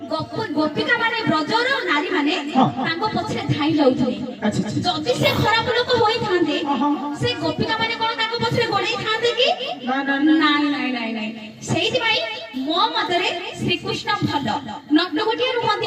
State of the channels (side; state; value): both; identical; correlation 1.00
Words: ଗୋପିକା ମାନେ ବ୍ରଜର ନାରୀ ମାନେ ତାଙ୍କ ପଛରେ ଧାଇଁ ଯାଉଥିଲେ। ଯଦି ସେ ଖରାପ ଲୋକ ହୋଇଥାନ୍ତେ ସେ ଗୋପିକା ମାନେ କଣ ତାଙ୍କ ପଛରେ ଗୋଡ଼େଇଥାନ୍ତେ କି? ନାଇଁ ନାଇଁ ନାଇଁ ନାଇଁ। ସେଇଥିପାଇଁ ମୋ ମତରେ ଶ୍ରୀକୃଷ୍ଣ ଭଲ ନଟକୁଟିଆ ନୁହନ୍ତି।